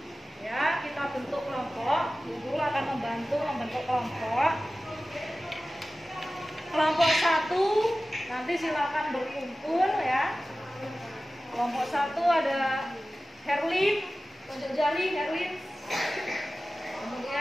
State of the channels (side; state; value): both; normal; correlation 0.96